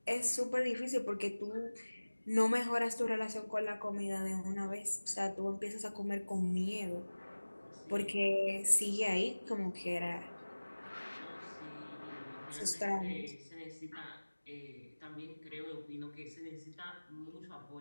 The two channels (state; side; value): inverted; both; correlation -1.00